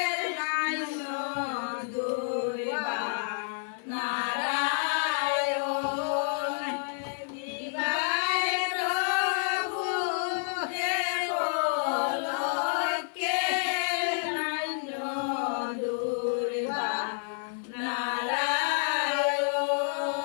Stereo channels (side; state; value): right; silent; 55 dB below the other